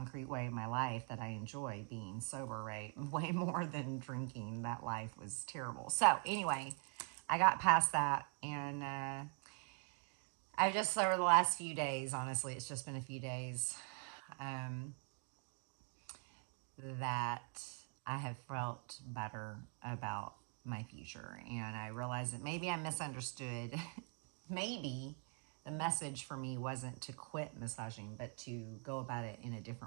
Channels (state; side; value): quieter; left; 38.7 dB